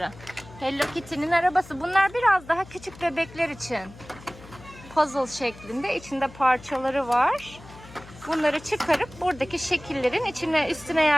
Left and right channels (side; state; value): left; noise; hum, 19 dB below the sound